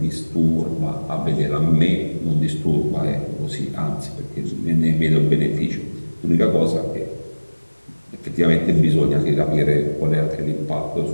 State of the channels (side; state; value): both; inverted; correlation -1.00